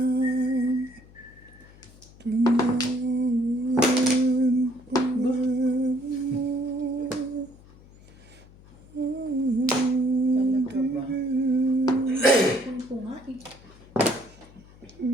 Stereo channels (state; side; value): noise; left; hum, 23 dB below the sound